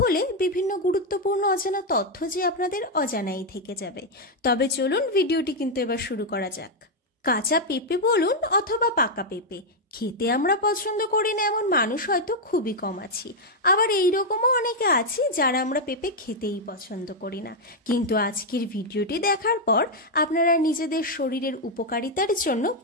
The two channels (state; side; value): normal; both; correlation 0.01